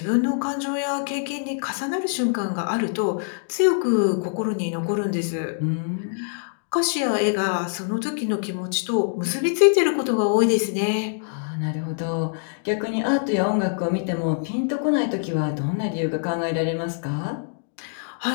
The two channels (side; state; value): right; silent; digital silence